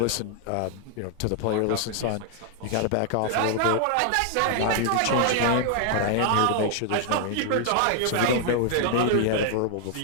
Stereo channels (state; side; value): different; both; correlation 0.00